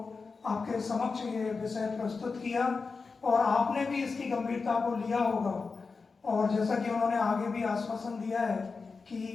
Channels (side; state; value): right; quieter; 4.5 dB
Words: आपके समक्ष ये विषय प्रस्तुत किया और आपने भी इसकी गंभीरता को लिया होगा। और जैसा कि उन्होंने आगे भी आश्वासन दिया है कि